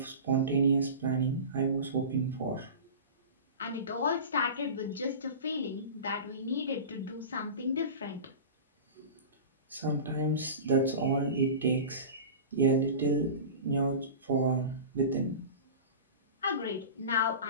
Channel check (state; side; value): inverted; both; correlation -0.33